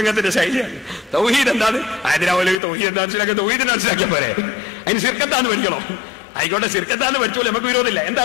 ശൈലിയാണ്. തൗഹീദ് എന്താണ്? അതിനാ മൗലവി തൗഹീദ് എന്താ മനസ്സിലാക്കാൻ തൗഹീദിനെ മനസ്സിലാക്കിയാൽ പോരെ, അതിന് ശിർക്ക് എന്താന്ന് പഠിക്കണം. ആയിക്കോട്ടെ, ശിർക്ക് എന്താന്ന് പഠിച്ചോളൂ, നമുക്ക് വിരോധമില്ല. എന്താ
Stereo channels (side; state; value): right; drops out; at 2.6 s